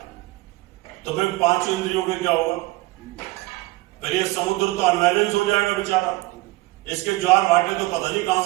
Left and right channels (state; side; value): quieter; left; 20.7 dB